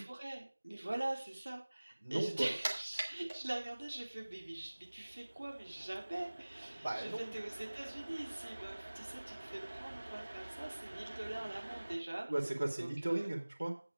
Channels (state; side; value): inverted; both; correlation -1.00